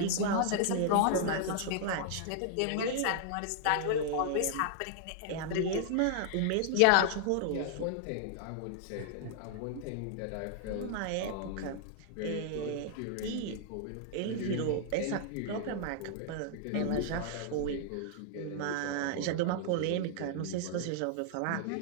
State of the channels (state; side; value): different; both; correlation -0.01